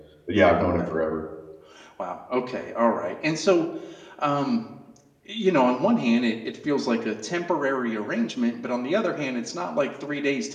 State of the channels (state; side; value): identical; both; correlation 1.00